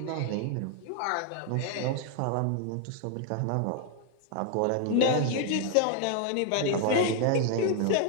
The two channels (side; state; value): both; different; correlation 0.00